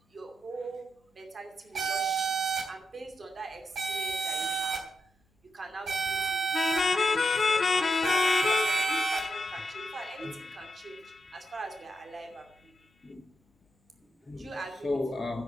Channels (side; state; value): both; normal; correlation 0.84